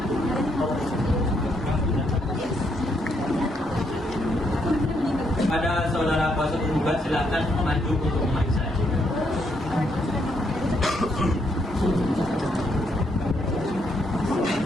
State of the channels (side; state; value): both; normal; correlation 0.75